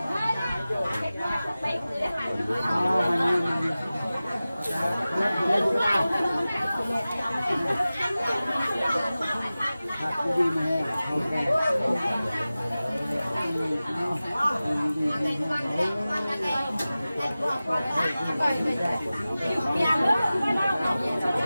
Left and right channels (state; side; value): inverted; both; correlation -0.96